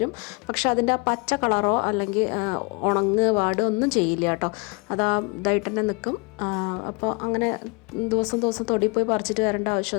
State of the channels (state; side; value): quieter; right; 30.4 dB